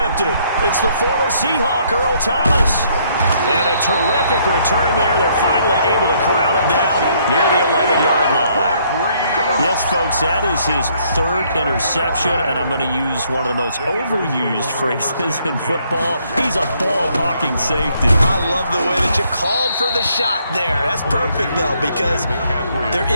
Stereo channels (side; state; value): both; inverted; correlation -0.68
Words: It's the former Seahawk, Earl Thomas. And a terrific return there. They're finally able to corral him down near the 11-yard line. Yes, folks, that is his 3rd interception, and I'm going to use one of the most overused phrases in football. He's a ball-hawking safety. I love the way that you called for the shot there. That's perfect, though, because there